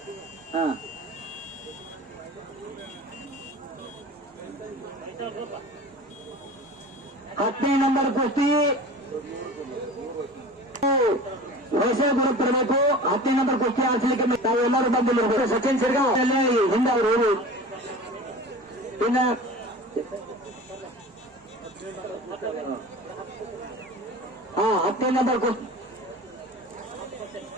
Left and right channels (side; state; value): both; normal; correlation 0.37